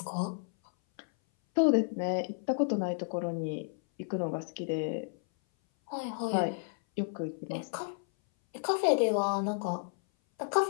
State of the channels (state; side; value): silent; right; 56 dB below the other